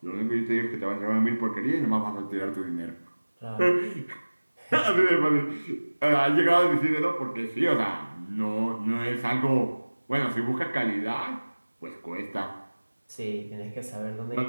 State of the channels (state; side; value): inverted; both; correlation -1.00